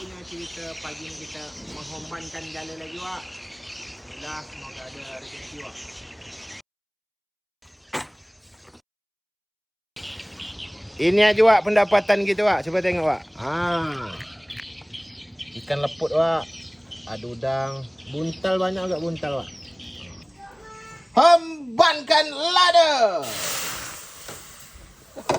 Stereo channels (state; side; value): identical; both; correlation 1.00